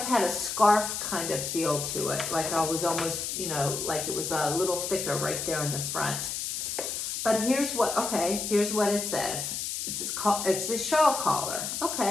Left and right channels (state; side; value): noise; left; hiss, 3 dB below the sound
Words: had a scarf kind of feel to it. Like I was almost, you know, like it was a little thicker right there in the front. But here's what it says. It's a shawl collar.